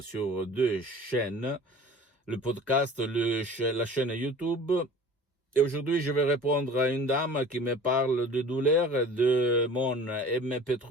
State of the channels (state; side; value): normal; both; correlation 0.43